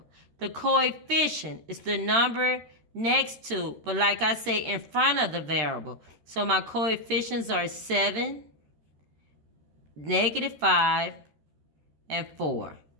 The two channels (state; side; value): late; left; 13 ms